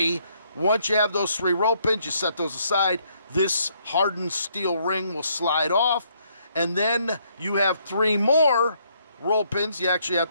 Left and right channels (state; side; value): inverted; both; correlation -0.70